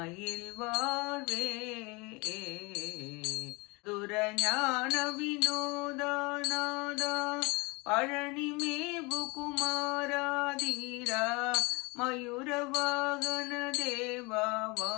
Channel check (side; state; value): right; quieter; 26.7 dB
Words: வாழ்வே துரஞான வினோதாநாதா பழனி மேவு குமாராதீரா மயூர வாகன